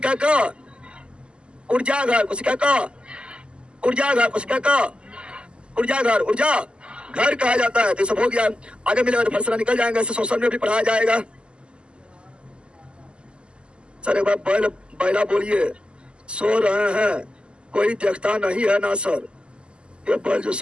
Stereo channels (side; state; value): left; late; 0.051 ms